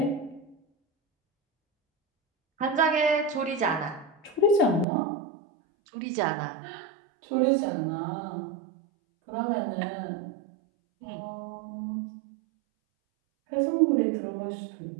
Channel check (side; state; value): left; drops out; at 4.9 s